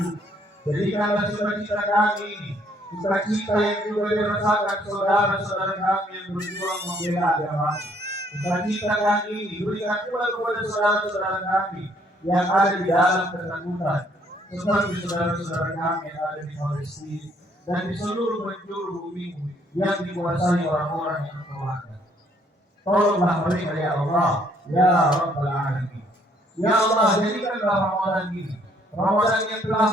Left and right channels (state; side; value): normal; both; correlation 0.66